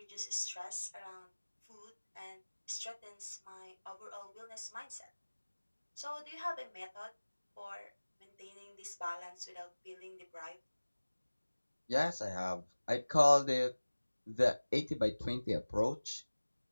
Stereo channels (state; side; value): inverted; both; correlation -1.00